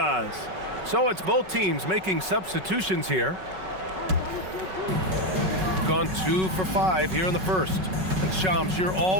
So it's both teams making substitutions here. Gone 2 for 5 here in the first. And Shams, you're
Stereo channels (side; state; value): left; late; 5.3 ms